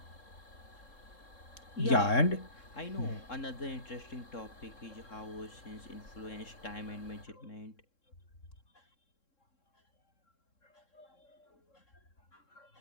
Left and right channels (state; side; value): late; right; 3.7 ms